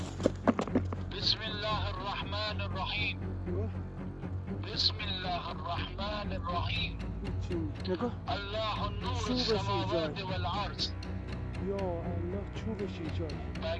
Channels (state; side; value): identical; both; correlation 1.00